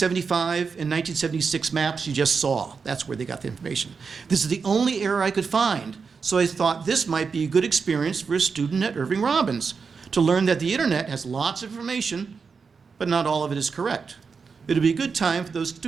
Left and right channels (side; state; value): left; quieter; 5.3 dB